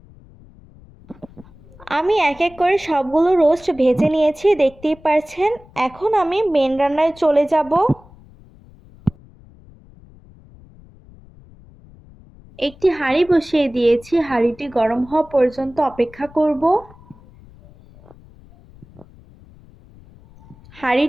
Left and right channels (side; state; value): left; noise; rumble, 24 dB below the sound